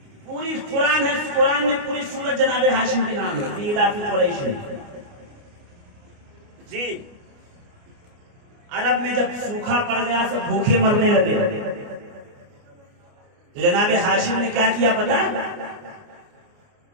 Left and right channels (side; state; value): left; late; 29 ms